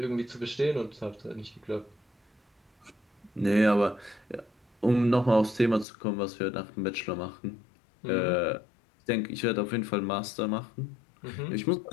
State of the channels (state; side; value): drops out; right; at 5.9 s